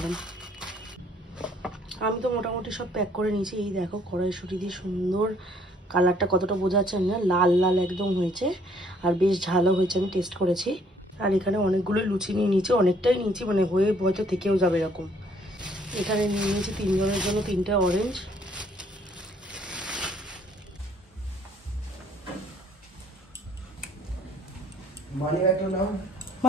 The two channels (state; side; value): normal; both; correlation 0.62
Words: আমি তো মোটামুটি সব প্যাক করে নিয়েছি। এই দেখো কড়াইশুঁটি দিয়ে সুন্দর কালারটা কতটা বোঝা যাচ্ছে না, লাল লাল একদম হয়েছে, আর বেশ ঝালও হয়েছে, আমি টেস্ট করেছি। আর এখানে অনেকগুলো লুচি নিয়ে নিয়েছি, অনেকটাই নিয়েছি, মানে হয়ে হয়তো থেকেও যাবে এরকম। এখানে নিয়ে নিয়েছি 3 জনের জন্য 3টে অরেঞ্জ।